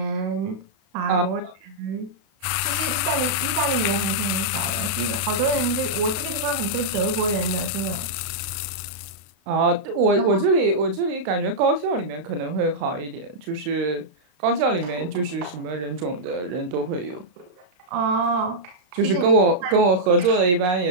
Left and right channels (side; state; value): left; late; 32 ms